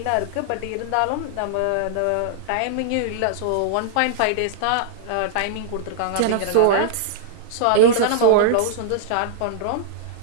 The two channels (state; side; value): different; both; correlation -0.02